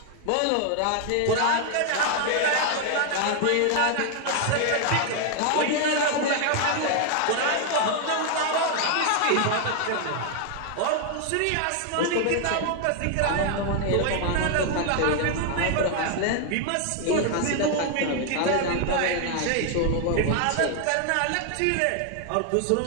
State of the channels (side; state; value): both; different; correlation 0.00